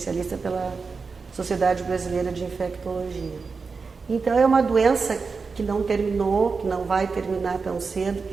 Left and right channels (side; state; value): left; quieter; 4.7 dB